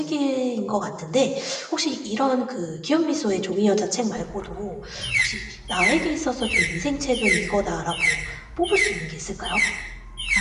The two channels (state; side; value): identical; both; correlation 1.00